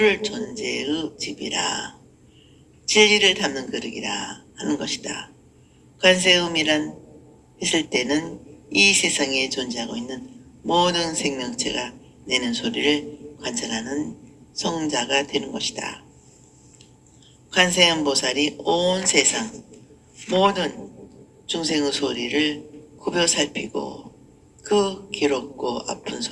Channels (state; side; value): identical; both; correlation 1.00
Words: 존재의 집이라, 진리를 담는 그릇이라 하는 것이다. 관세음이란 했을 때는 이 세상에 존재하고 있는 모든 생명체가 내는 소리를 관찰하는 성자가 되는 것이다. 관세음 보살이 온 세상 모든 중생의 소리를 굽혀 살피고 그 괴롭고 아픈